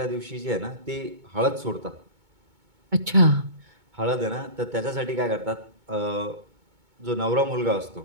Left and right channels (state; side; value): late; left; 2.2 ms